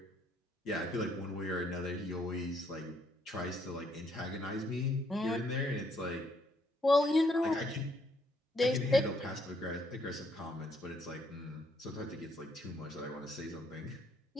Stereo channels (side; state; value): both; normal; correlation 0.70